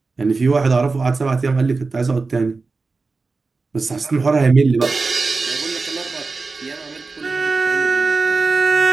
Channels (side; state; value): left; quieter; 4.0 dB